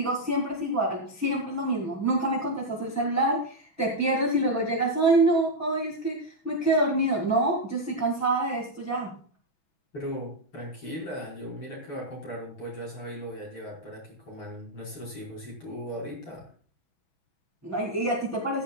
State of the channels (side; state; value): right; late; 6.1 ms